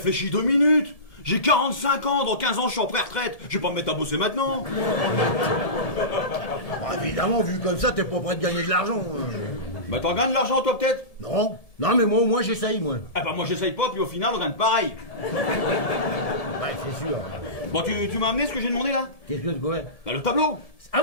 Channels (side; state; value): right; late; 1.7 ms